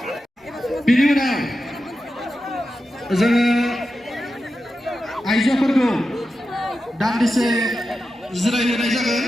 Biनि unaव जोङो आइजोफोरखौ दान्दिसे जिरायहोनाय जागोन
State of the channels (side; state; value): both; normal; correlation 0.91